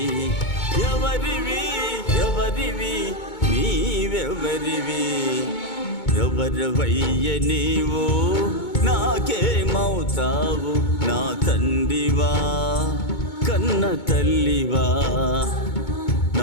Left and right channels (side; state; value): right; late; 2.2 ms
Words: ఎవరివి ఎవరివి నీవెవరివి. ఎవరివయ్య నీవు నాకేమవుతావు, నా తండ్రివా కన్న తల్లివా.